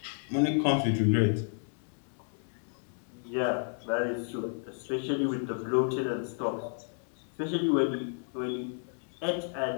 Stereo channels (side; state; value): right; silent; 57 dB below the other